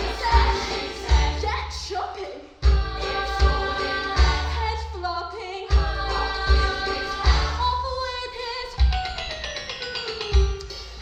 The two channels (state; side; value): identical; both; correlation 1.00